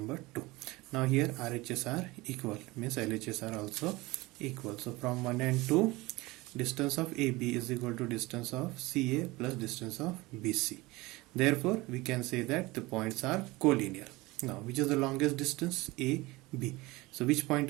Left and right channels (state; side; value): quieter; left; 21.4 dB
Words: 2. Now here RHS are equal, means LHS are also equal. So from 1 and 2, distance of AB is equal to distance of CA plus distance of BC. Therefore we can say that the points are collinear. Now which is the longest distance? A, B. So which point